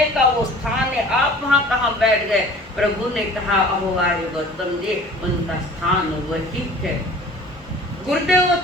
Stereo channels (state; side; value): normal; both; correlation 0.46